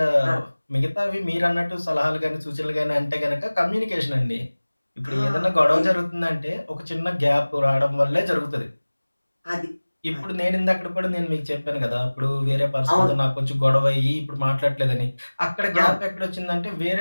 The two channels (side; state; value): both; inverted; correlation -1.00